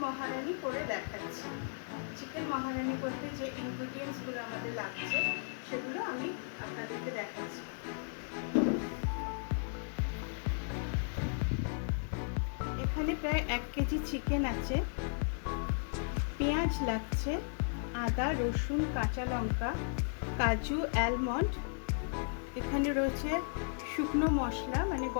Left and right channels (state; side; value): silent; right; 54 dB below the other